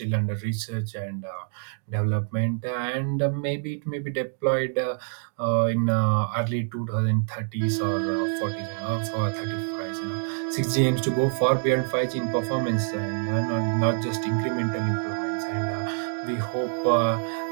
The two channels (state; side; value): silent; left; 61 dB below the other